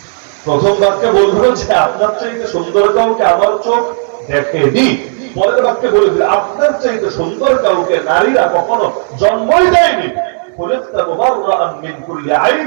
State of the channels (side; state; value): left; silent; digital silence